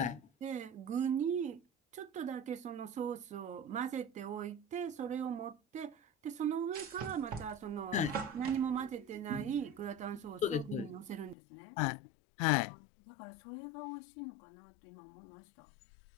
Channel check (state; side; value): drops out; right; at 11.4 s